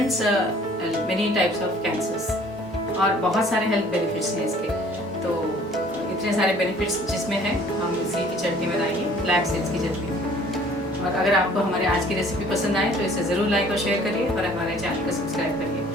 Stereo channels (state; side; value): normal; both; correlation 0.54